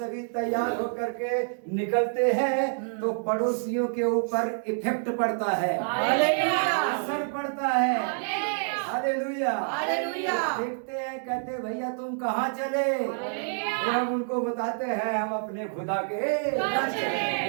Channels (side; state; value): left; silent; digital silence